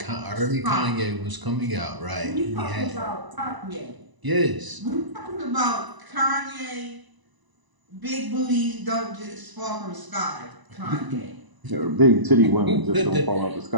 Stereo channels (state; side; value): late; left; 1.0 ms